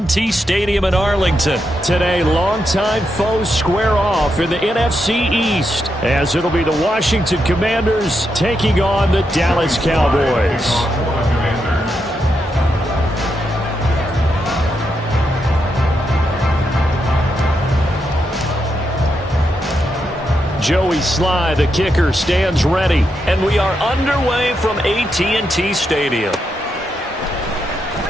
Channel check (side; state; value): both; normal; correlation 0.83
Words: Stadium in Arlington. Today, longtime foes square off in the NFC East, as it'll be the Washington Commanders taking on the Dallas Cowboys. Joey Sly, the kicker, stands ready. And we are underway from AT&T Stadium.